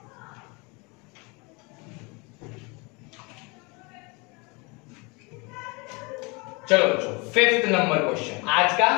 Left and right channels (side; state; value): right; quieter; 28.4 dB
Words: चलो बच्चों 5th नंबर क्वेश्चन, आज का